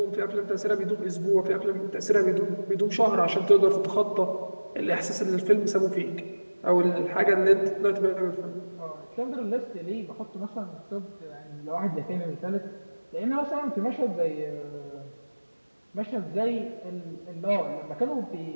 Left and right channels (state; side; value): inverted; both; correlation -1.00